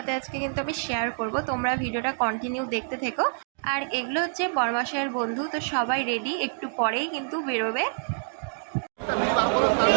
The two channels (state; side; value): silent; left; 60 dB below the other